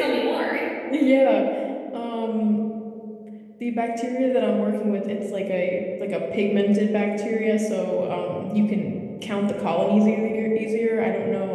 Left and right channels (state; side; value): identical; both; correlation 1.00